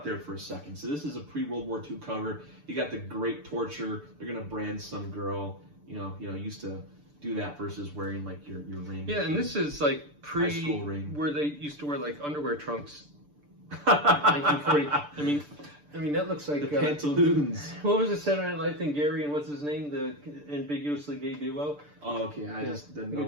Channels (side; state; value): left; late; 6.8 ms